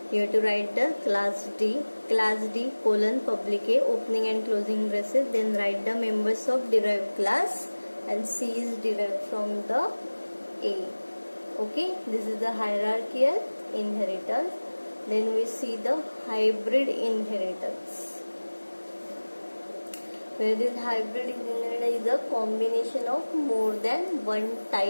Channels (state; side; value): inverted; both; correlation -1.00